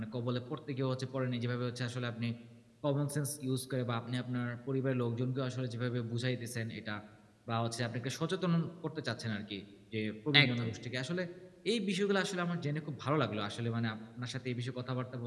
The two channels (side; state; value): both; identical; correlation 1.00